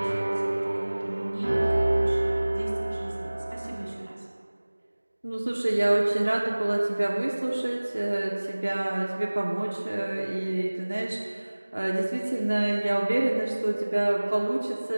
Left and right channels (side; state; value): both; inverted; correlation -1.00